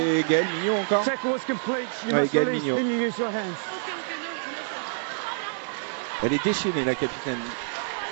Gaëlle Mignot encore. Ouais, Gaëlle Mignot. Elle est déchaînée, la capitaine.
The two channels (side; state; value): left; silent; digital silence